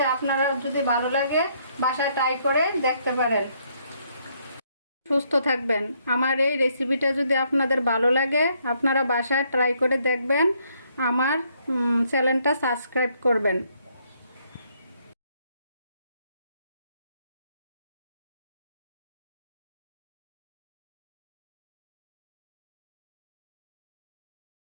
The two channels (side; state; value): both; inverted; correlation -0.70